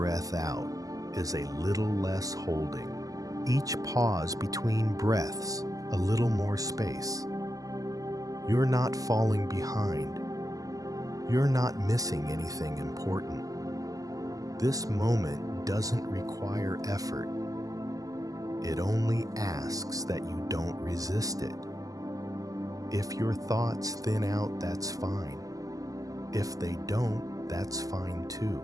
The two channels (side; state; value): left; late; 0.17 ms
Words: out is a little less holding. Each pause between breaths, a little more space. You're not falling behind. You're not missing anything important. This moment doesn't require effort. It only asks that you don't resist it. If your thoughts thin out, that's fine. If they don't, that's fine too.